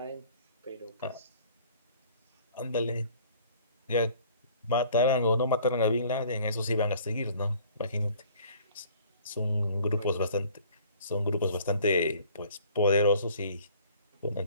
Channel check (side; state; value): both; inverted; correlation -0.53